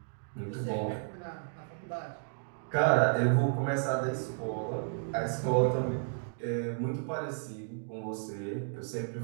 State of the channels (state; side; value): silent; left; digital silence